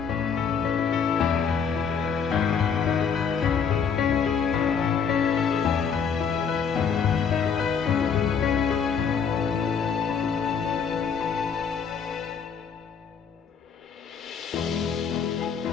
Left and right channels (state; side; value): quieter; right; 6.6 dB